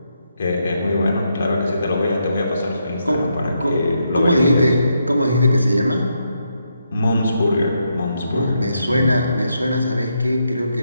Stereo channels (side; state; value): both; inverted; correlation -0.80